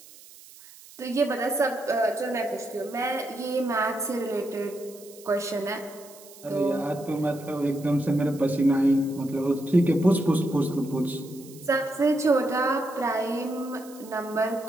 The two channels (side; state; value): right; noise; hiss, 21 dB below the sound